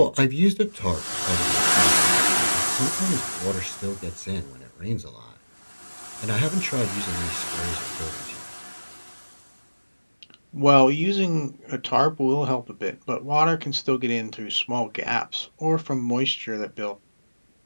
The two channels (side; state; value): both; inverted; correlation -1.00